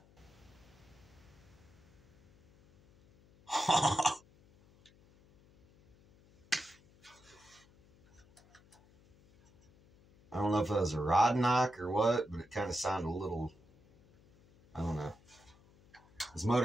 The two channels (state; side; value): noise; left; hum, 28 dB below the sound